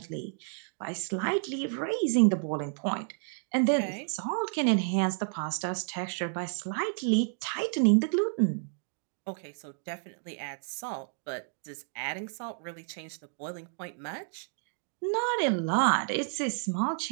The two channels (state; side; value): silent; left; 57 dB below the other